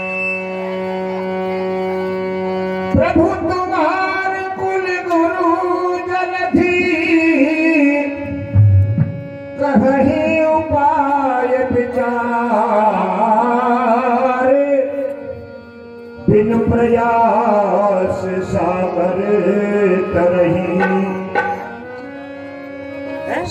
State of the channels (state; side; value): identical; both; correlation 1.00